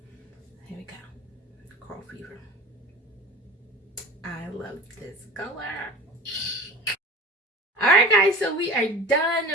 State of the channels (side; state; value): both; normal; correlation 0.36